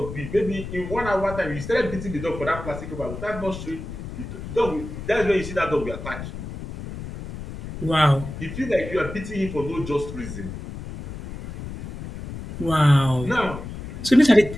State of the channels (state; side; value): noise; left; rumble, 9 dB below the sound